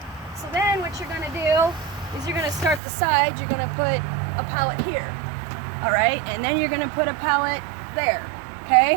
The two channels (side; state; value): left; drops out; at 2.8 s